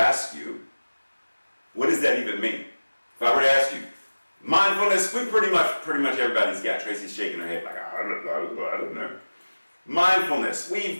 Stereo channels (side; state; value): both; inverted; correlation -1.00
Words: you, what does that even mean? If I were to ask you, mindfulness, we pretty much everybody's got. Tracy's shaking her head like, I don't know. Mindfulness.